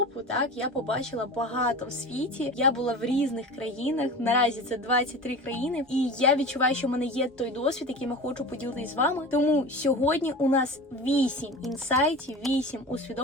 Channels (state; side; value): normal; both; correlation 0.33